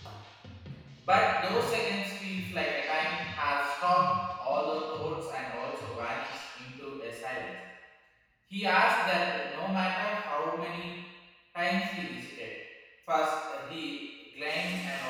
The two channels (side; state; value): both; identical; correlation 1.00